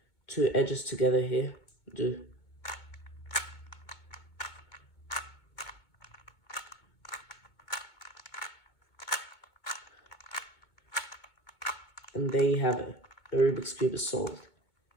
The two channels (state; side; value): late; right; 2.2 ms